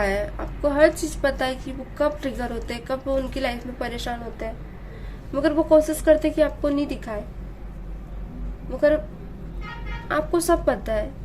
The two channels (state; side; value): identical; both; correlation 1.00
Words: आपको हर चीज पता है कि वो कब ट्रिगर होते हैं, कब वो उनकी लाइफ में परेशान होते हैं, मगर वो कोशिश करते कि आपको नहीं दिखाए। मगर आपको सब पता है,